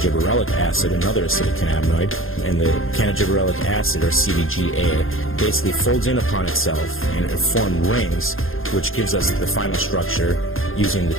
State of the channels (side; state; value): right; late; 0.60 ms